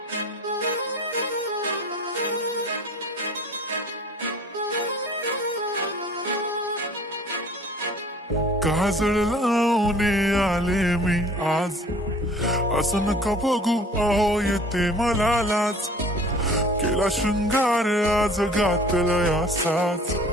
लावून आले मी आज, असं नका बघू अहो येते मला लाज. केला शृंगार आज घातलंय असाच,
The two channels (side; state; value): both; normal; correlation 0.49